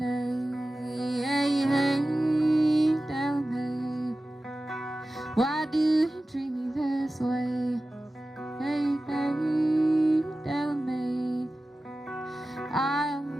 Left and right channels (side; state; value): both; normal; correlation 0.95